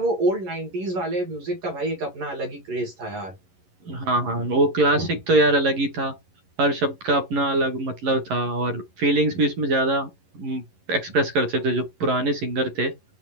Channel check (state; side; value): late; left; 11 ms